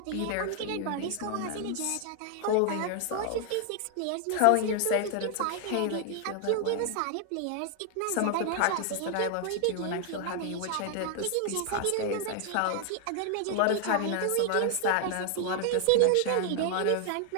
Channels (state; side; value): different; both; correlation 0.00